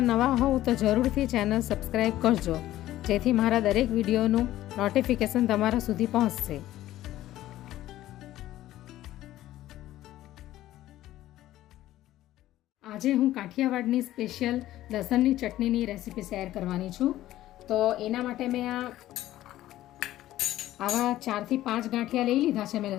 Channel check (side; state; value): right; quieter; 14.4 dB